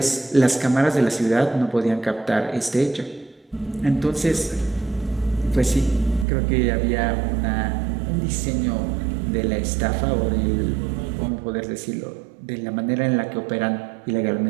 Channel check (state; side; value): drops out; left; at 6.2 s